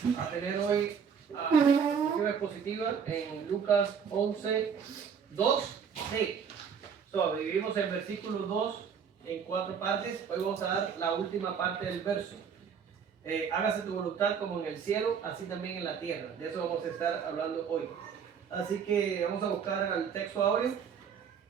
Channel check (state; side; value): quieter; left; 6.9 dB